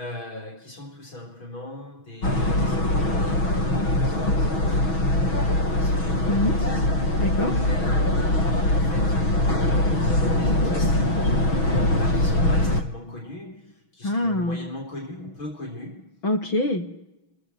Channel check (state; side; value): late; right; 6.2 ms